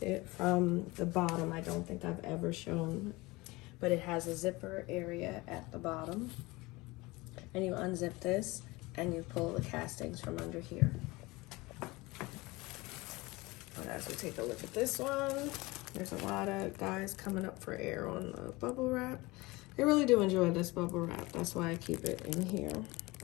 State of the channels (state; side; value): quieter; right; 22.3 dB